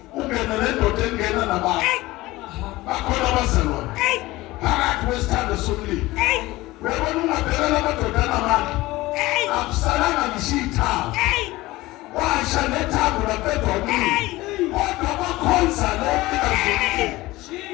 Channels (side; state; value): right; quieter; 19.0 dB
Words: Ungena nendoda engena nabantu. hey, Bakhona abazalwane. hey, Phakathi kwesithando somlilo. hey, Uyabona ungabheka lamadoda amandla. hey, Akusalanga ngisho ithambo. hey, Washa nethambo laphethe umlilo. hey, Kodwa bakhonza lo hey.